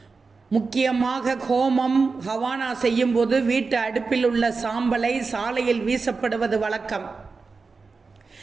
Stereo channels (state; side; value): quieter; left; 4.4 dB